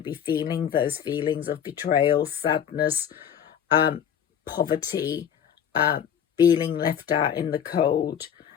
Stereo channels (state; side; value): quieter; right; 8.8 dB